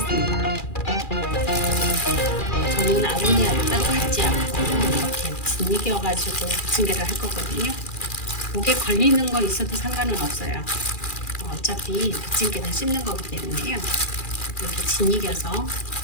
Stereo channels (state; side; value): late; right; 2.4 ms